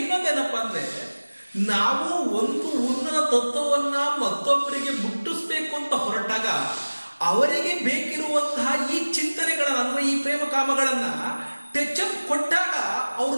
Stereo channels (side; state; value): both; inverted; correlation -1.00